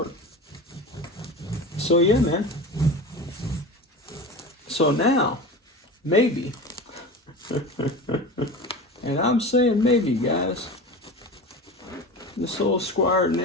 So yeah, man. So now, maybe, and I'm saying maybe, guys, this old Squier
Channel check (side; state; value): both; normal; correlation 0.31